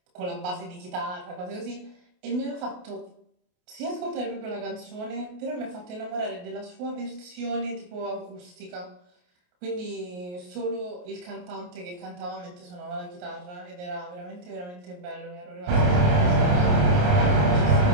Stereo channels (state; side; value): late; left; 28 ms